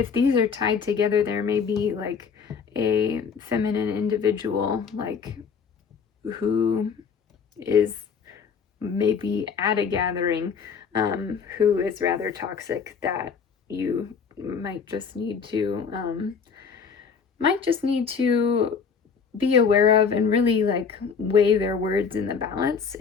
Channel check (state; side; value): quieter; right; 6.1 dB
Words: these are tied together, there may be like a feminine individual, like, who is maybe at a gathering, who is rather toxic, that you might just need to be aware of, and really like weigh their words in the balance,